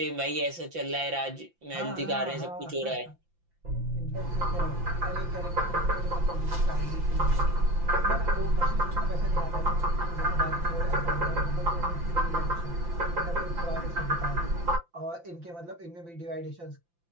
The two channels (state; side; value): late; left; 5.8 ms